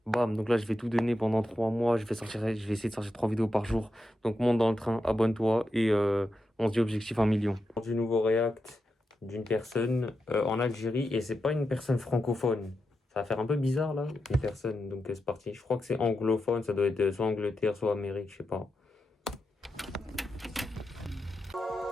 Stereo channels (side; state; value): both; normal; correlation 0.88